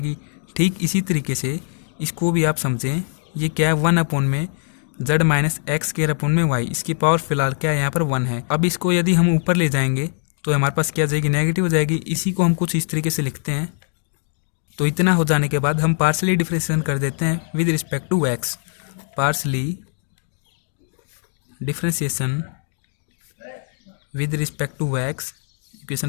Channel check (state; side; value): silent; right; digital silence